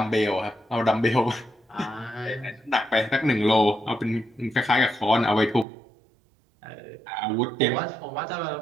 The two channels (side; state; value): left; drops out; at 5.7 s